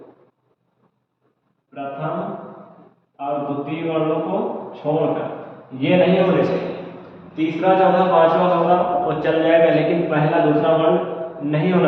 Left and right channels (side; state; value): both; identical; correlation 1.00